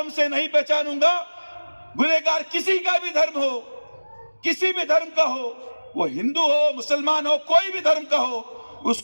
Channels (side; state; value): both; inverted; correlation -1.00